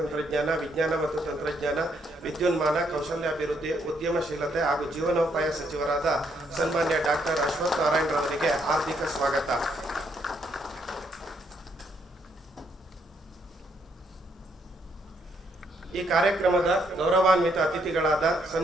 ವಿಜ್ಞಾನ ಮತ್ತು ತಂತ್ರಜ್ಞಾನ, ವಿದ್ಯುನ್ಮಾನ, ಕೌಶಲ್ಯಾಭಿವೃದ್ಧಿ, ಉದ್ಯಮಶೀಲತೆ ಹಾಗೂ ಜೀವನೋಪಾಯ ಸಚಿವರಾದ ಸನ್ಮಾನ್ಯ ಡಾಕ್ಟರ್ ಅಶ್ವಥ್ ನಾರಾಯಣರವರಿಗೆ ಹಾರ್ದಿಕ ಸ್ವಾಗತ. ಈ ಕಾರ್ಯಕ್ರಮದ ಗೌರವಾನ್ವಿತ ಅತಿಥಿಗಳಾದ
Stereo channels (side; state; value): both; normal; correlation 0.73